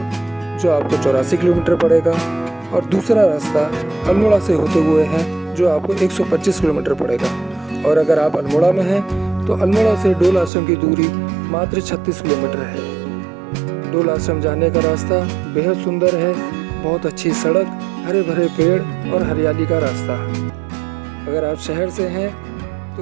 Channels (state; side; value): drops out; left; at 10.5 s